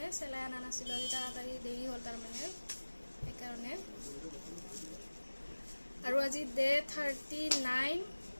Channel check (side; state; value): both; inverted; correlation -1.00